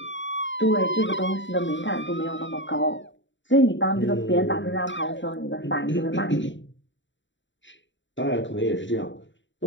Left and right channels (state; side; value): late; right; 0.54 ms